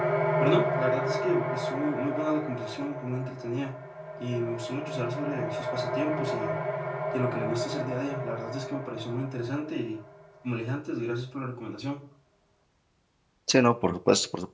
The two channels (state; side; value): identical; both; correlation 1.00